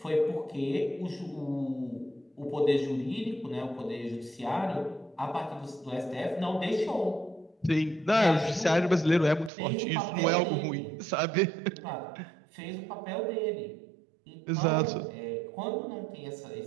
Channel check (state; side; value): drops out; left; at 9.5 s